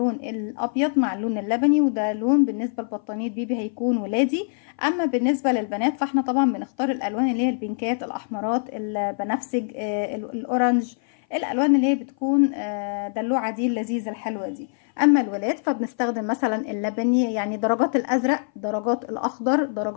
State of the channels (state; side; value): silent; right; 57 dB below the other